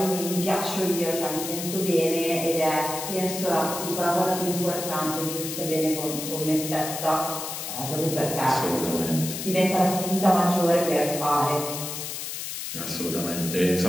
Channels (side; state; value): left; noise; hiss, 6 dB below the sound